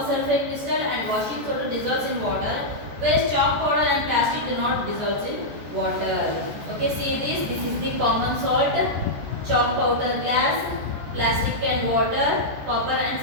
sulfate crystal and washing soda dissolves in water, whereas chalk powder and plastic do not dissolve in water. Okay, see this. This is the common salt, chalk powder glass, plastic and water, copper and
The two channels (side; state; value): left; late; 14 ms